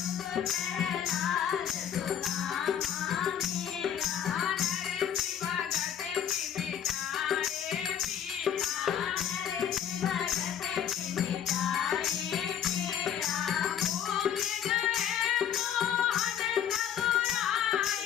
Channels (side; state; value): right; quieter; 9.2 dB